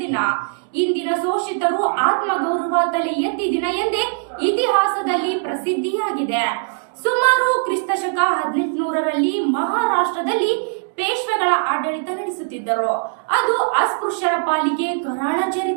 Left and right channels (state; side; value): silent; left; digital silence